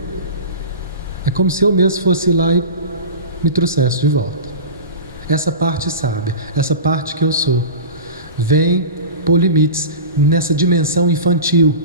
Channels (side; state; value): both; inverted; correlation -0.31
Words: é como se eu mesmo fosse lá e me trouxesse de volta. Essa parte sábia, essa parte que eu sou, vem pôr limites nessa dimensão infantil.